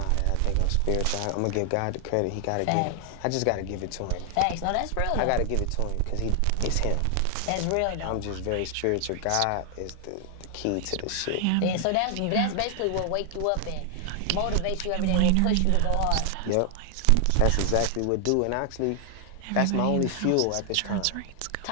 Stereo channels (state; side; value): different; both; correlation 0.00